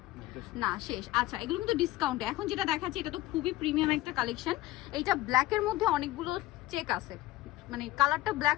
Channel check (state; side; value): quieter; right; 17.2 dB